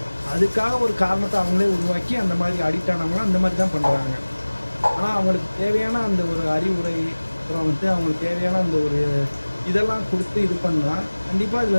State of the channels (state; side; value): inverted; both; correlation -1.00